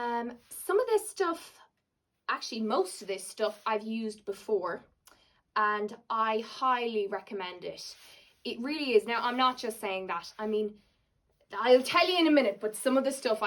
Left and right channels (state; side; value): identical; both; correlation 1.00